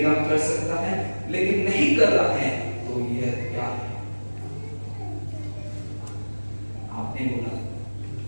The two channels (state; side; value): inverted; both; correlation -1.00